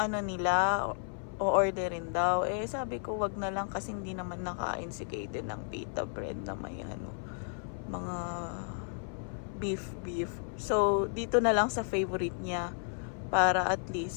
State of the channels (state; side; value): silent; right; 56 dB below the other